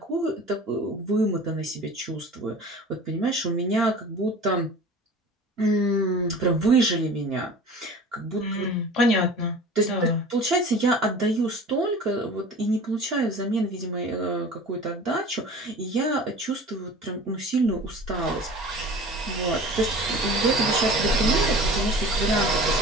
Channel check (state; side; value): normal; both; correlation 0.40